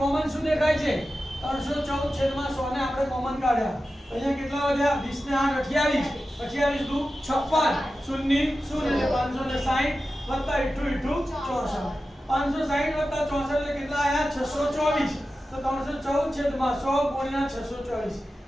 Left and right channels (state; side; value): normal; both; correlation 0.93